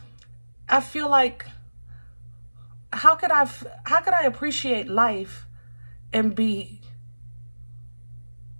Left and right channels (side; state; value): both; inverted; correlation -1.00